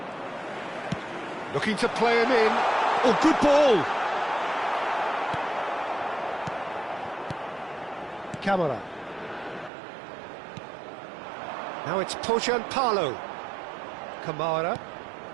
Looking to play him in. Oh, good ball! Camera. Now it's Pojanpalo. Kamara.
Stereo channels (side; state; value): left; drops out; at 9.7 s